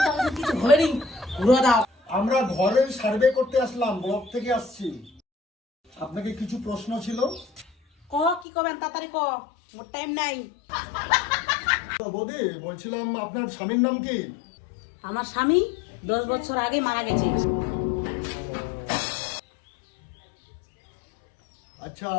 কিছু হয়নি, ঘুরে দাও। আমরা ঘরের সার্ভে করতে আসলাম, ব্লক থেকে আসছি। আপনাকে কিছু প্রশ্ন ছিল। ক কি করবেন তাড়াতাড়ি ক, মোর টাইম নাই। বৌদি বলছিলাম আপনার স্বামীর নাম কি? আমার স্বামী 10 বছর আগে মারা গেছে। আচ্ছা,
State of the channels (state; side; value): drops out; right; at 8.5 s